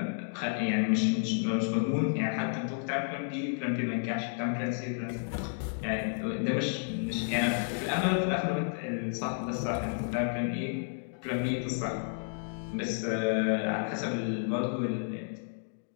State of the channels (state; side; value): silent; right; digital silence